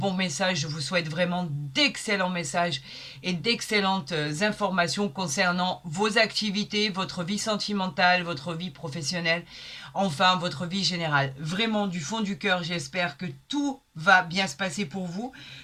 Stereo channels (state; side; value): identical; both; correlation 1.00